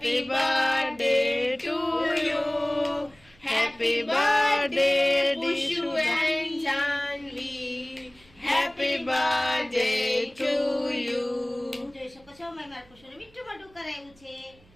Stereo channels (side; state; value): right; noise; hum, 29 dB below the sound